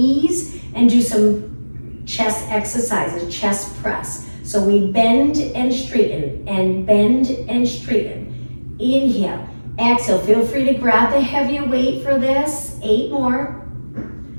and do some chest exercises, chest press. So we bend and straighten and bend and straighten. Inhale, exhale. Feel free to grab the heavier weight for this. 8 more.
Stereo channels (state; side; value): inverted; both; correlation -1.00